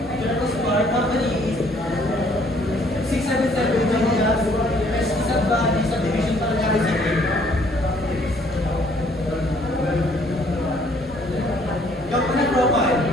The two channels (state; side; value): normal; both; correlation 0.62